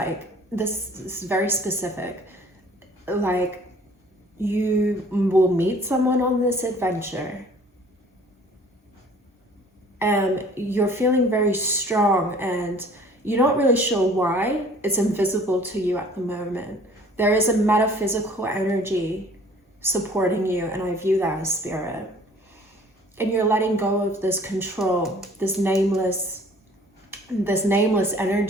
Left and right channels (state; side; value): normal; both; correlation 0.53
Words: this is very specific. Like, you will meet someone on this adventure and you're feeling very strong and you're not really sure why. It's invisible to you at the moment. There is a metaphysical energy supporting you, and I view that as spirit. And you're letting go of this control, this nameless